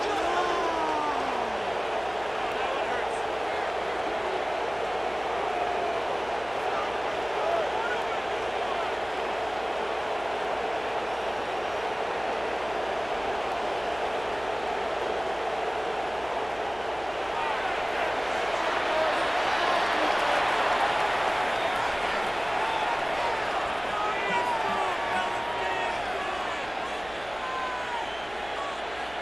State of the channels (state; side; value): noise; right; hum, 20 dB below the sound